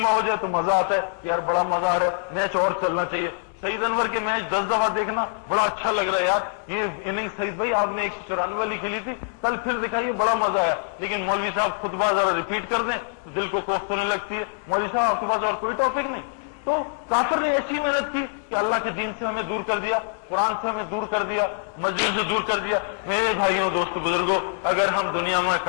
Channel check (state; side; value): silent; right; 58 dB below the other